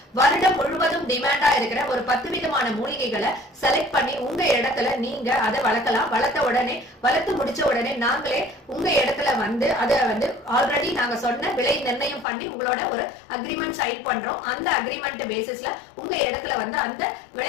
வருடம் முழுவதும் டிமாண்டா இருக்கிற ஒரு 10 விதமான மூலிகைகளை செலக்ட் பண்ணி உங்க இடத்துல நீங்க அதை வளர்க்கலாம். வளர்த்து முடிச்ச உடனே நாங்களே உங்க இடத்துல வந்து அதை வந்து ஆல்ரெடி நாங்க சொன்ன விலை நிர்ணயம் பண்ணி உங்களோட ஒரு அக்ரிமெண்ட் சைன் பண்றோம். அந்த அக்ரிமெண்ட் பேசிஸ்ல உங்க இடத்துல வந்து அந்த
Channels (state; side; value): drops out; right; at 12.2 s